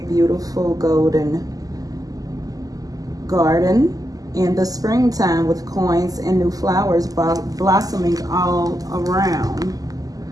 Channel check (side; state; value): left; late; 0.17 ms